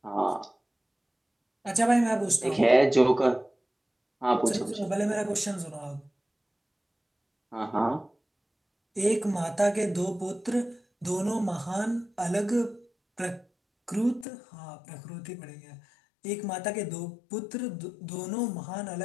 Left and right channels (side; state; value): right; drops out; at 14.2 s